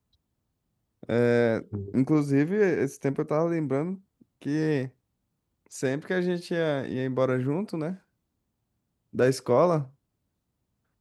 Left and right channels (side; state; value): both; identical; correlation 1.00